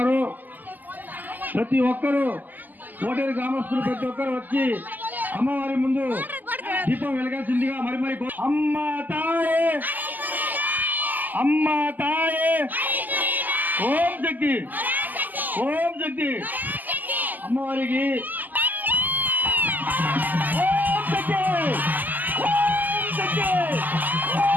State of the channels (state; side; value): late; left; 0.084 ms